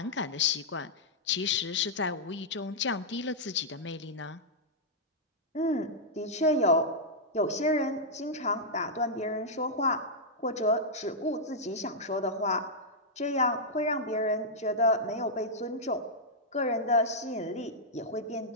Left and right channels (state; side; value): normal; both; correlation -0.08